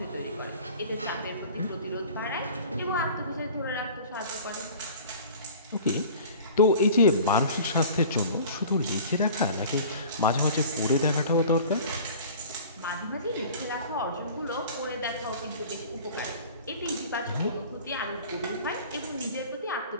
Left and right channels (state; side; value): inverted; both; correlation -0.43